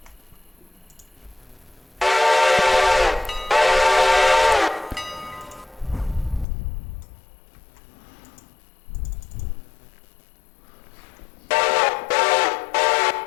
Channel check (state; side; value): drops out; right; at 6.5 s